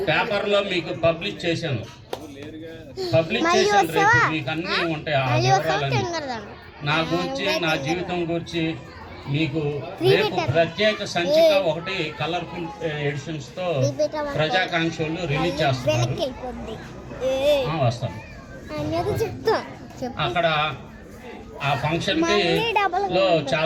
పేపర్లో మీకు పబ్లిష్ చేశాను. రేపు మీకు అన్నీ ఉంటాయి. ఆ వివరాలన్నీ నా గురించి, నా జీవితం గురించి మీకు రేపు ప్రత్యేక సంచిక ఒకటి కలర్ఫుల్ ఎడిషన్స్తో ప్రజాకాంక్షలు రిలీజ్ చేస్తున్నారు. వస్తాను. అక్కడ ఆ ఫంక్షన్కి లో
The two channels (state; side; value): identical; both; correlation 1.00